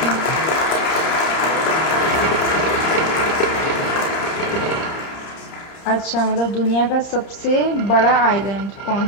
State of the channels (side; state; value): right; late; 30 ms